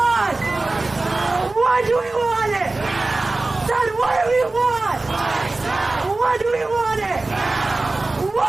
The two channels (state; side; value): quieter; left; 3.2 dB